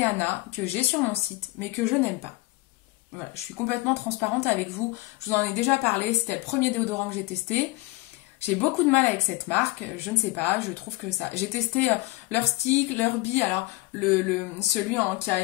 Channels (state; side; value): quieter; right; 21.9 dB